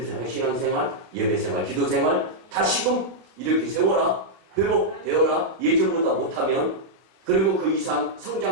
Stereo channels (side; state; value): left; late; 32 ms